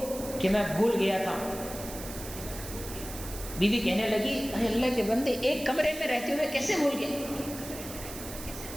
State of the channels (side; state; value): right; noise; hiss, 11 dB below the sound